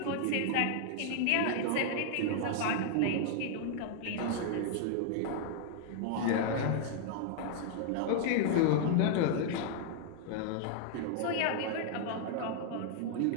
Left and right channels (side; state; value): both; different; correlation -0.01